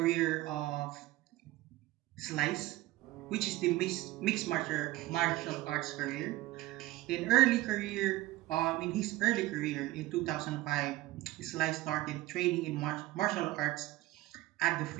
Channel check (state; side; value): quieter; left; 17.4 dB